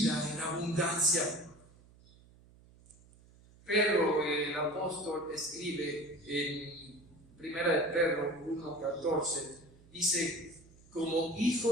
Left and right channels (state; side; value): noise; right; hum, 26 dB below the sound